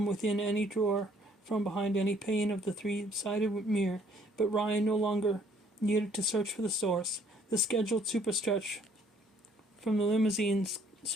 within any drawer, from behind any pane of the three-sided mirror, but Ryan no longer needed to search for the source. The scheduled superstretch from the limousine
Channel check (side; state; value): both; normal; correlation 0.62